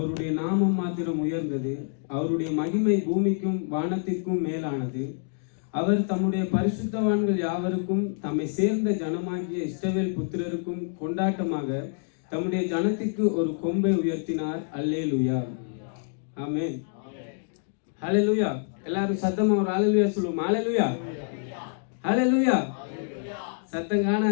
நாமம் மாத்திரம் உயர்ந்தது. அவருடைய மகிமை பூமிக்கும் வானத்திற்கும் மேலானது. அவர் தம்முடைய பரிசுத்தவான்கள் யாவருக்கும் தம்மை சேர்ந்த ஜனமாகிய இஸ்ரவேல் புத்திரருக்கும் கொண்டாட்டமாக தம்முடைய ஜனத்திற்கு ஒரு கொம்பை உயர்த்தினார். அல்லேலூயா, ஆமென். ஹல்லேலூயா. எல்லாரும் சத்தமா ஒரு ஹல்லேலூயா சொல்லுவோம். ஹல்லேலூயா, ஹல்லேலூயா. சத்தம்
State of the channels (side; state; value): right; silent; digital silence